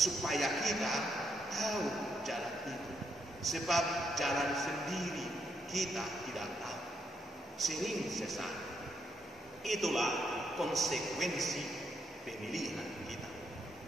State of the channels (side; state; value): both; normal; correlation 0.78